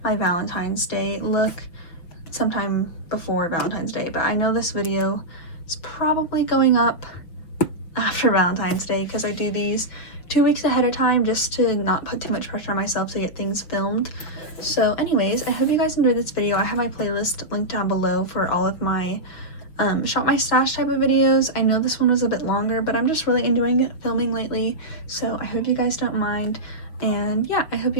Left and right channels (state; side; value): late; right; 6.1 ms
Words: my Valentine's Day look sometime before Valentine's Day, but I know this video is probably going up after Valentine's Day because I do these 2 weeks ahead of time just to not put too much pressure on myself to get things filmed. So anyways, I hope you guys enjoyed this video. I have my playlist linked down below for all of my shop my stash type of videos. I know this one was a bit longer, but I'm just really enjoying filming lately, so I hope you guys don't mind. And yeah, I hope